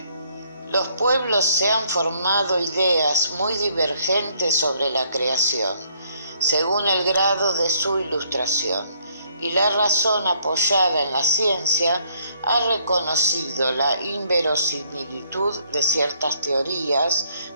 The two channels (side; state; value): both; inverted; correlation -0.67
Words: Los pueblos se han formado ideas muy divergentes sobre la creación, según el grado de su ilustración, y la razón apoyada en la ciencia ha reconocido la inverosimilitud de ciertas teorías,